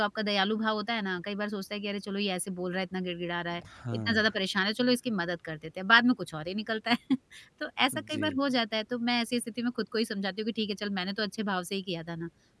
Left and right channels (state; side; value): identical; both; correlation 1.00